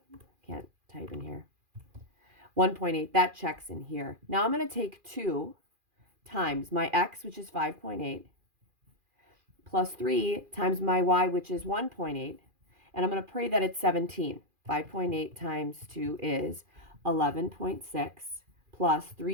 can't type in here, 1.8. That checks in here. Now I'm going to take 2 times my x, which is 5.8, plus 3 times my y, which is 1.8. And I'm going to pray that it's 17. 5.8 times 2 is 11.6. Plus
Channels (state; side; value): late; left; 2.4 ms